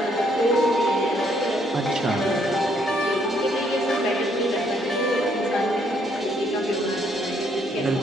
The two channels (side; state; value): both; normal; correlation 0.69